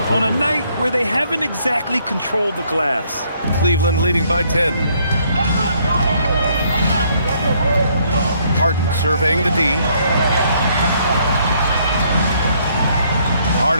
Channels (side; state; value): both; inverted; correlation -0.68